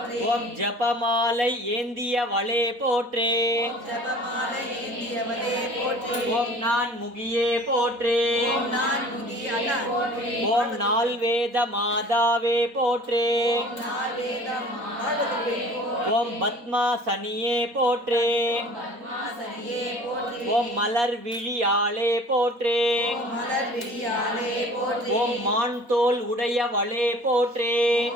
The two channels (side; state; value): left; late; 4.2 ms